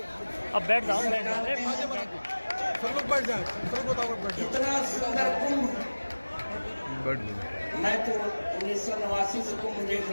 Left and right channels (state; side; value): inverted; both; correlation -1.00